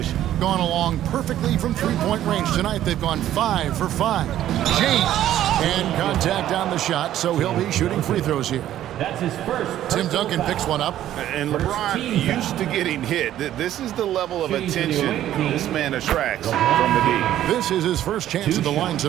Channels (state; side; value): quieter; left; 12.3 dB